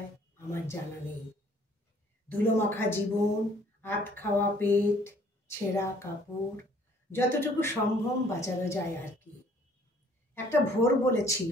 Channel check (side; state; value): both; normal; correlation 0.59